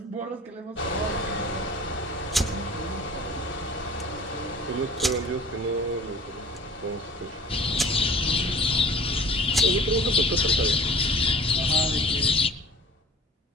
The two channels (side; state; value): both; normal; correlation 0.44